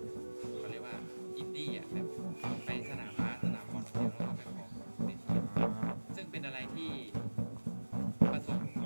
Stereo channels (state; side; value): inverted; both; correlation -1.00